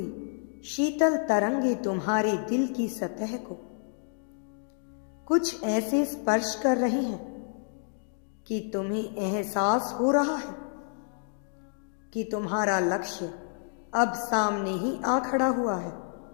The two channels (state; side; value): silent; right; 58 dB below the other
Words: शीतल तरंगे तुम्हारे दिल की सतह को कुछ ऐसे स्पर्श कर रही हैं कि तुम्हें एहसास हो रहा है कि तुम्हारा लक्ष्य अब सामने ही आ खड़ा हुआ है।